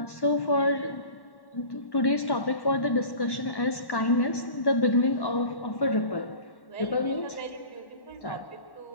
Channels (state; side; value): late; right; 1.1 ms